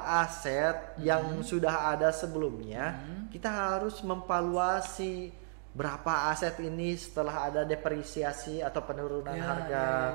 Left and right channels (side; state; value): left; silent; digital silence